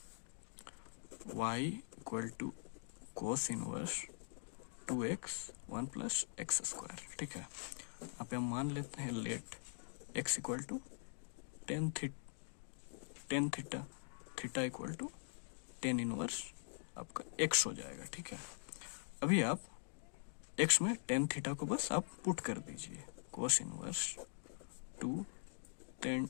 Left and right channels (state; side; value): silent; right; digital silence